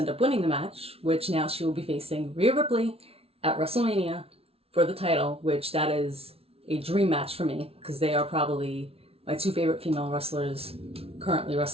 up winning the match, which now she will be facing Rhea Ripley at WrestleMania for the title, which that is a dream match for me because they are probably my two favorite female wrestlers currently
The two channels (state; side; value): late; left; 0.29 ms